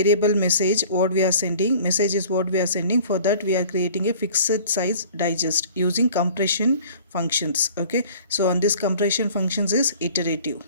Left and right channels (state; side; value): inverted; both; correlation -0.48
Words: message what we are sending, message is what we are sending, for that we are creating a fixed size digest using compression functions. Okay, so on this compression functions is iterative.